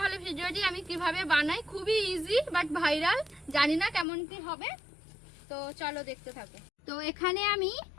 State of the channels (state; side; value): drops out; right; at 4.0 s